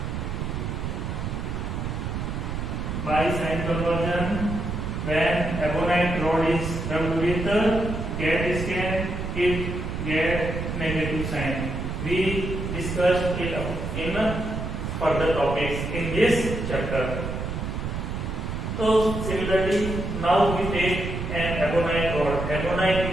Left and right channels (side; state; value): right; noise; rumble, 4 dB below the sound